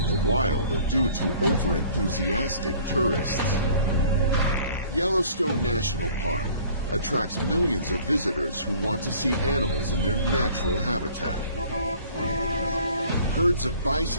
the wild are due to over-enthusiastic tourists. Yellowstone National Park attracts millions of visitors who want to see animals in their natural habitat. Herds of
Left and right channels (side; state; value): both; inverted; correlation -0.52